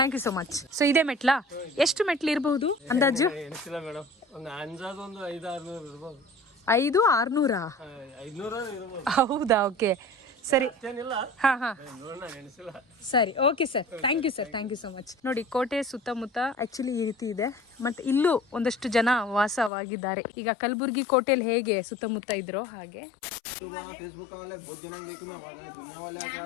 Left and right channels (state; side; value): drops out; right; at 19.7 s